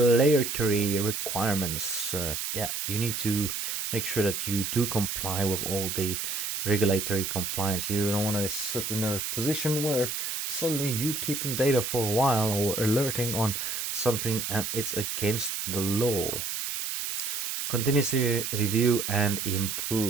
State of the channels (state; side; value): noise; right; hiss, 3 dB below the sound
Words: requirements, you need to make sure that you do comply with all the regulatory compliance. You don't want to sit in a position where suddenly you keeping data for a while or alerting on something and it's against the law. Continuously review and